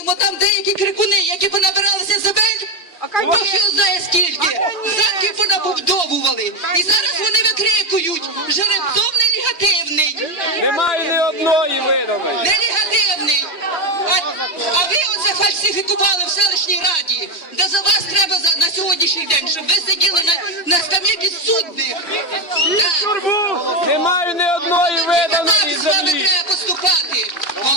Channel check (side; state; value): right; late; 3.2 ms